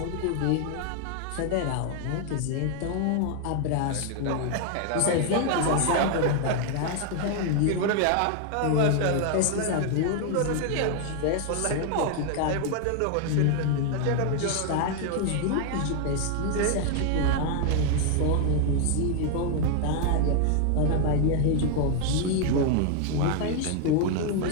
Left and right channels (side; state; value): both; different; correlation 0.00